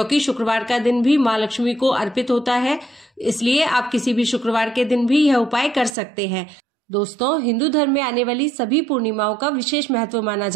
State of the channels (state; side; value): drops out; left; at 5.9 s